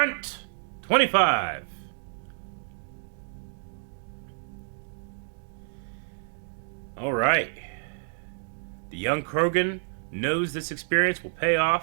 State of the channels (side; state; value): left; silent; digital silence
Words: 25. Alright. The young Krogan knows this experience will pay